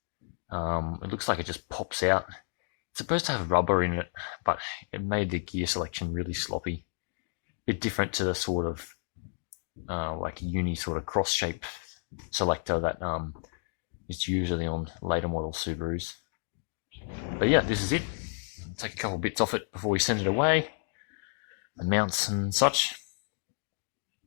It looks like it just pops out. It's supposed to have rubber in it, but it made the gear selection really sloppy. A bit different to the sort of like a uni sort of cross shape selector that is usually on later model Subarus. But yeah, this is it. Take a couple bits off it before we send it away, the mounts and such.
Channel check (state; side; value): silent; right; digital silence